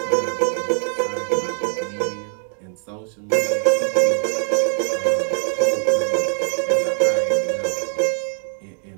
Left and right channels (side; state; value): left; silent; digital silence